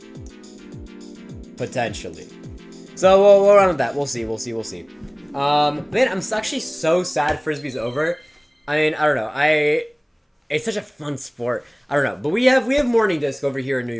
Potentially. So we'll run with that. We'll see. Man, I'm actually so sad Frisbee's over. I mean, I don't know. It's such a fun sport. I don't know. But we have morning disc over here in New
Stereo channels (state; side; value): identical; both; correlation 1.00